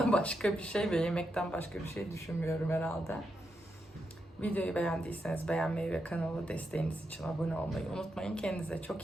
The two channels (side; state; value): both; normal; correlation 0.84